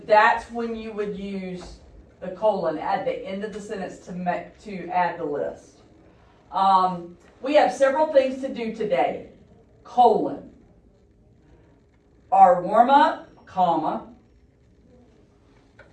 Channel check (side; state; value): both; identical; correlation 1.00